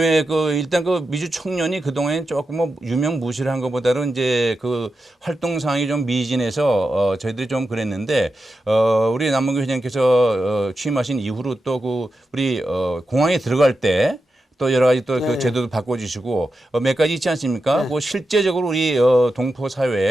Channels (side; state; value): both; normal; correlation 0.89